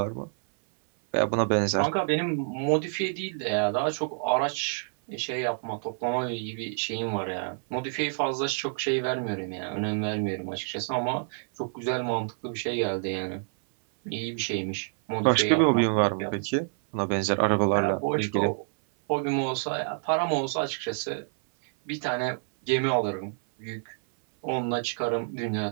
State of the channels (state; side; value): silent; left; 60 dB below the other